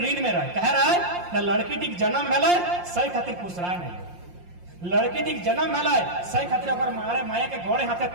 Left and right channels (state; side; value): late; left; 5.7 ms